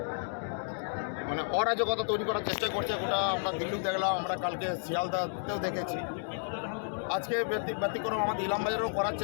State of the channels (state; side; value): silent; right; digital silence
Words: মানে অরাজকতা তৈরি করার চেষ্টা করছে, ওটা আমরা দিল্লিও দেখলাম, আমরা কালকে শিয়ালদাতেও দেখেছি। আজকে ব্যতিক্রম আমাদের ইলামবাজারেও করার